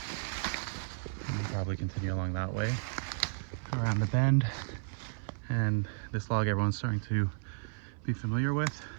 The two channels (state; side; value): silent; left; 56 dB below the other